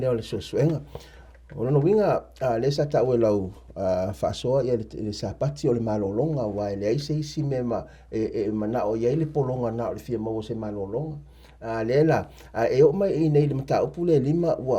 le suasuenga. O lono winga le sa tau e lau whaasoa ia le sapati o le malolonga wa le aise isi me mana o iei le polonga na o le fia mau se malolonga. Le la e o mai i nei le mata upu le lima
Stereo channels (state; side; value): identical; both; correlation 1.00